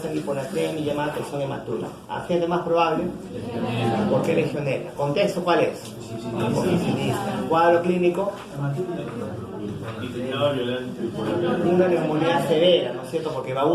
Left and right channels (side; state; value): both; identical; correlation 1.00